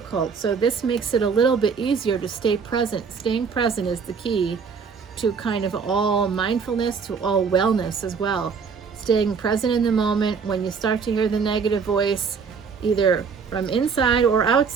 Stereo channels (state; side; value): quieter; left; 5.7 dB